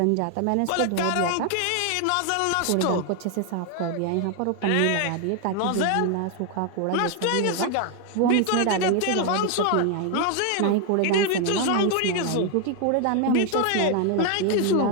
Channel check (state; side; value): different; both; correlation 0.01